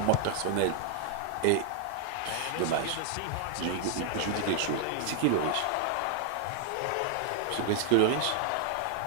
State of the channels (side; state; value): both; different; correlation 0.00